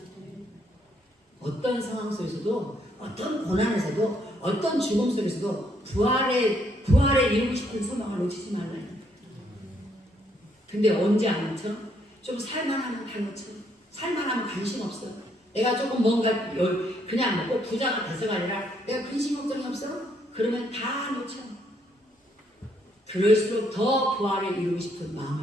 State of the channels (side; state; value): both; normal; correlation 0.71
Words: 어떤 상황 속에서도, 어떤 고난에서도, 어떤 죽음 속에서도 부활에 이루고 싶은 소망을 놓치지 말라요. 근데 언제 안 놓쳐? 좀 살만하면 다 놓쳐. 살만하면 관심 없어. 내가 조금 뭔가 그냥 꼭 부자가 돼서가 아니라 내가 근심 걱정이 없어? 그러면 다 놓쳐. 그럴수록 더 부활에 이루고 싶은